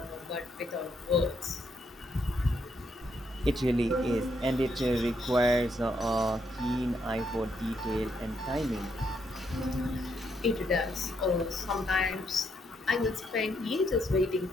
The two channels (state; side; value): normal; both; correlation 0.76